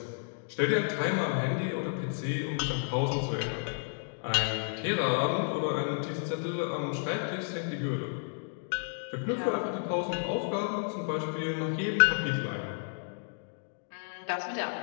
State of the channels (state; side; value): silent; right; digital silence